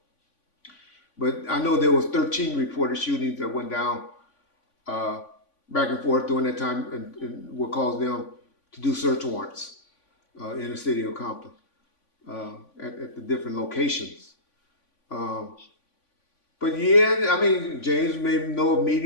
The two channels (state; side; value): late; right; 3.5 ms